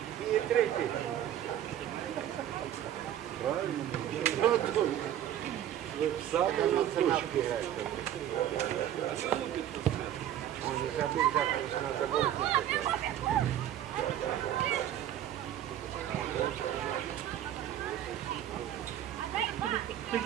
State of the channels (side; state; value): left; quieter; 11.3 dB